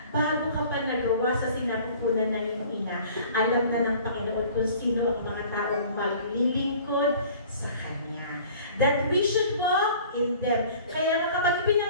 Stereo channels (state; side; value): inverted; both; correlation -0.48